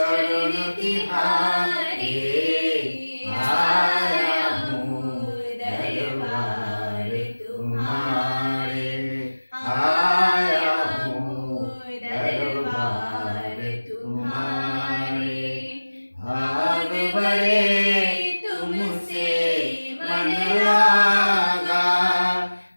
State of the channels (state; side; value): inverted; both; correlation -1.00